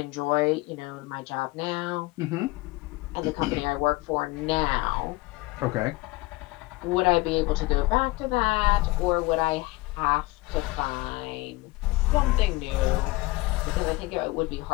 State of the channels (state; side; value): quieter; right; 21.6 dB